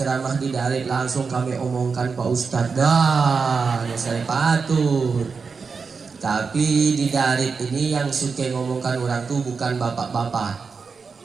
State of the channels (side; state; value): left; quieter; 5.1 dB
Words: di Darit, langsung kami omongkan Pak Ustadz. Dah, ya saya patut. Tapi di Darit ini yang suka ngomongkan orang tuh bukan bapak-bapak,